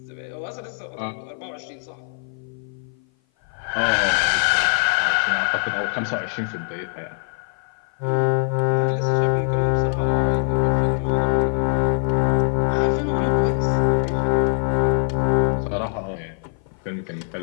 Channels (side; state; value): right; silent; 56 dB below the other